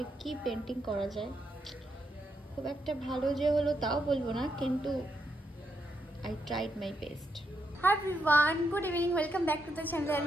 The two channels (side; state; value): both; normal; correlation 0.81